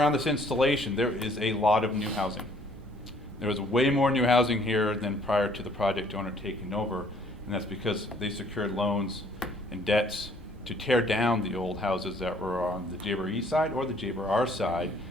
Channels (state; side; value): normal; both; correlation 0.61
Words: this installation, there is a lot of new housing. There was way more new housing here than prior to the project owner taking over, and that's because they secured loans and debts to tear down the old houses that were on the JBER side or the JBER side